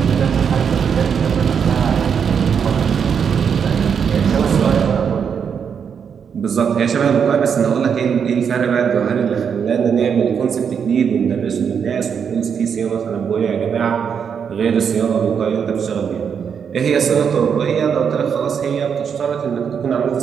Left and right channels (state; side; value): quieter; left; 7.1 dB